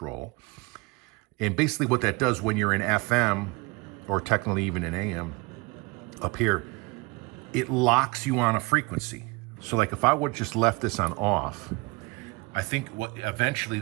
And basically what that does when you're in FM, or technically even in AM, up here, it locks you on a frequency. So like if I would just left this on off, I think eventually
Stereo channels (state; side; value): quieter; left; 26.0 dB